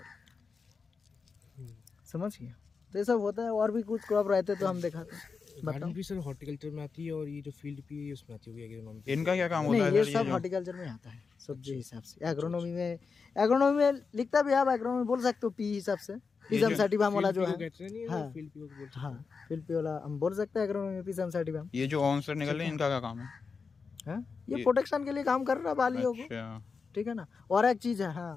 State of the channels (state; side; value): quieter; right; 5.1 dB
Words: समझ गया? तो ये सब होता है। और भी कुछ क्रॉप रहते तो हम दिखाते हैं। गार्डन भी सर हॉर्टिकल्चर में आती है और ये जो फील्ड पी है उसमें आती है एग्रोनॉमी। इनका क्या काम होता नहीं, है ये सर? सब जो- हॉर्टिकल्चर में आता है सब्जी हिसाब से। एग्रोनॉमी में लिखता भी है, आप एग्रोनॉमी बोल सकते हो पी हिसाब से, पिजम सर्टिफाम वाला जो है। कहते नहीं हाँ। है फील्ड पी को बोलते हाँ, फिल्पी वाला हम बोल सकते हैं एग्रोनॉमी में, पिजम सर्टिफाम। ये जो ऑन से निकल रहे हैं इनका क्या काम है? हाँ, ये प्रोटेक्शन के लिए काम कर रहा है बालियों को, अच्छा, ठीक है ना। और एक चीज है,